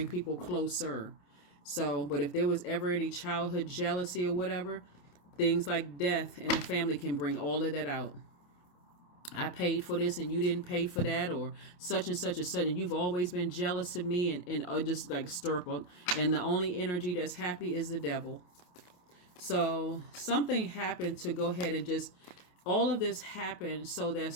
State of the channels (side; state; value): right; late; 28 ms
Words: people closer. So, but if there was ever any childhood jealousy or whatever, things like death in the family can bring all of that out. I paid for this and you didn't pay for that, or such and such and such, and you've always been jealous of me, and just like stir up. And the only energy that's happy is the devil. So something happened to go ahead and just, all of this happened so that